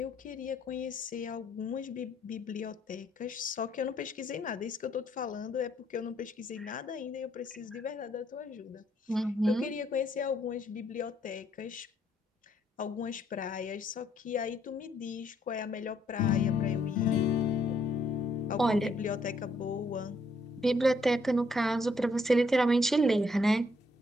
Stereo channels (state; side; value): normal; both; correlation 0.70